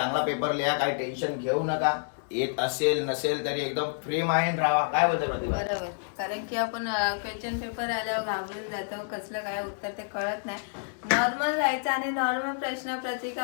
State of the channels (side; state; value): right; silent; digital silence